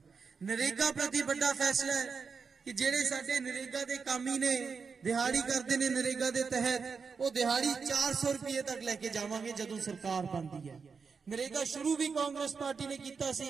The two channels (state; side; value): quieter; left; 5.4 dB